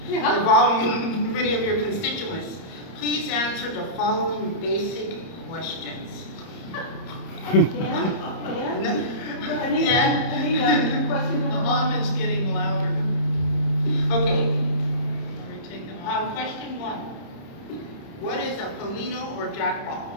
involving many of your constituents. Please answer the following basic questions. Dan? Anita, question The number hum one. is getting louder. Okay, Are we taking off? question one. What is a Polino or jackball?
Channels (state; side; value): late; right; 30 ms